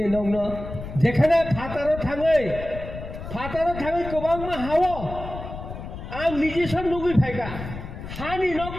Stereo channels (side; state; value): left; noise; rumble, 10 dB below the sound